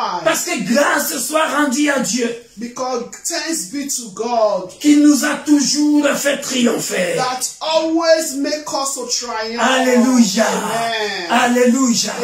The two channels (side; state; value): both; identical; correlation 1.00